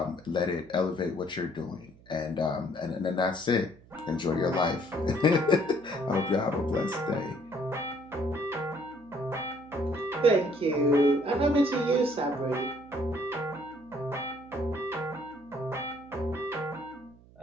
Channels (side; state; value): right; noise; hum, 24 dB below the sound